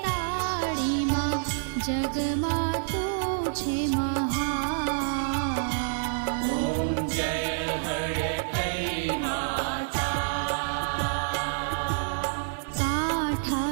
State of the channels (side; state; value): left; silent; digital silence